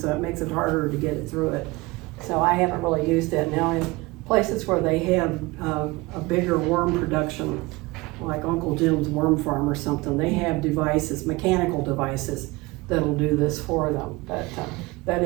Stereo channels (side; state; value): left; quieter; 22.4 dB